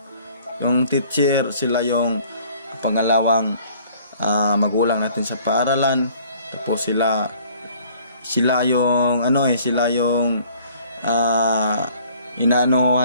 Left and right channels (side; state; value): both; inverted; correlation -0.56